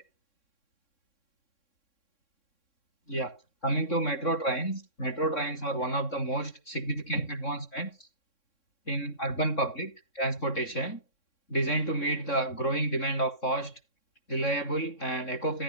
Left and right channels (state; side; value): late; right; 3.6 ms